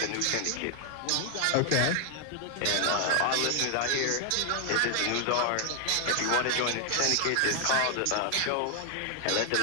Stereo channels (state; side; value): different; both; correlation 0.00